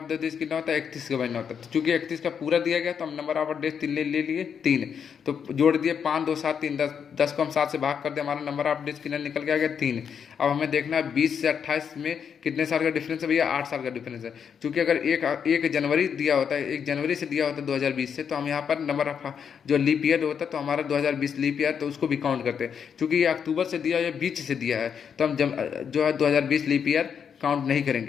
डेज कितना होता है? 31 का महीना होता है। तो चूंकि 31 का पूरा दिया गया तो हम नंबर ऑफ डेज 3 ले लिए, 3। तो जोड़ दिए 5, 2, 7, 3, 10। 10 को हम 7 से भाग कर दिए, हमारा नंबर ऑफ डेज कितना निकल के आ गया? 3। अब हमें देखना है 20 से 28 में कितने साल का डिफरेंस है भैया? 8 साल का डिफरेंस है। चूंकि अगर एक जनवरी दिया होता है, 1 जनवरी से दिया होता है 2020 से, तो हम यहाँ पर नंबर ऑफ जो लीप ईयर होता है तो हमारा 2020 लीप ईयर, तो उसको भी काउंट करते हैं। चूँकि ये अक्टूबर से दिया है या बीच से दिया है, तो हम जो है 2020 लीप ईयर काउंट नहीं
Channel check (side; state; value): right; quieter; 7.3 dB